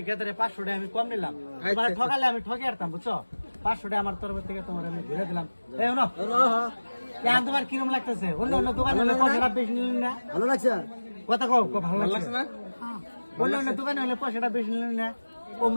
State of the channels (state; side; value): inverted; both; correlation -1.00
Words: গেদারে 500 টাকা আমি কম নিলাম। মানে ঠকালে আমি ঠকে আরতাম বুঝছো, 500 টাকা আমার তরফ থেকে তোমার আমি ঘুরে দিলাম। এই না কেন তোমার কিরম লাগতেছে? অন্য অন্য দোকানে হলে পয়সাটা বেশি নিলেন না? ভালো লাগছে? কথা কও, ভালো লাগছে না? অন্য অন্য দোকানে হলে পয়সাটা বেশি নিলেন না?